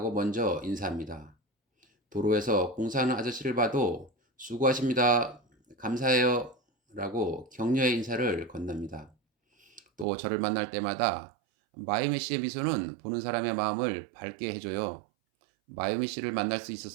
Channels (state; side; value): drops out; left; at 10.1 s